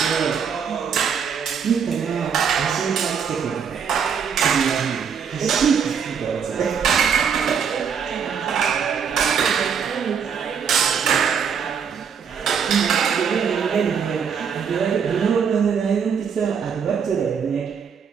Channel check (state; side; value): quieter; left; 6.9 dB